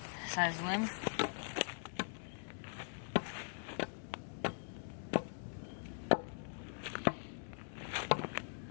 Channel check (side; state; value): right; silent; digital silence